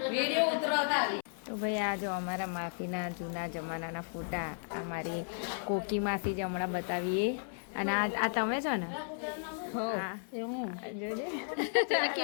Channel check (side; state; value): right; silent; 55 dB below the other